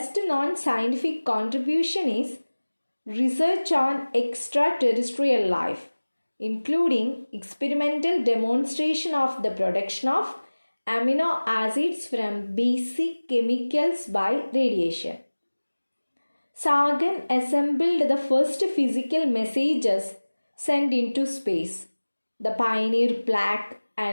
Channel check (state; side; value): inverted; both; correlation -1.00